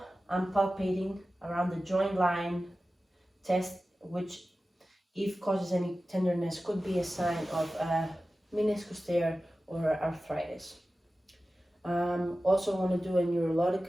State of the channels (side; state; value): both; normal; correlation 0.95